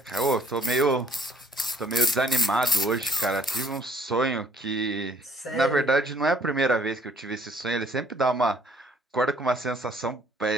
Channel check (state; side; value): normal; both; correlation 0.62